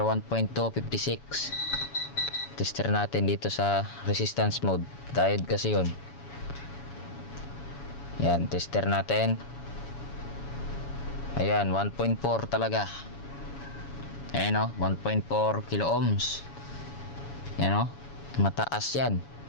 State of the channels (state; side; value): late; right; 7.1 ms